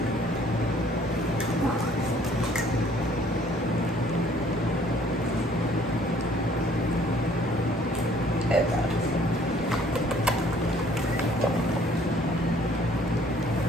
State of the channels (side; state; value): both; normal; correlation 0.59